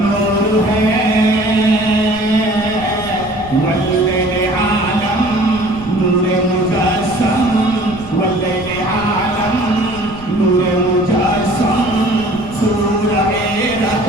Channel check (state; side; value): noise; right; rumble, 16 dB below the sound